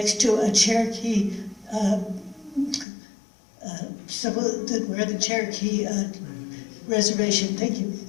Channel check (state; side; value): drops out; right; at 2.9 s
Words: to a Cherokee, where the Cherokee reservation, thank you.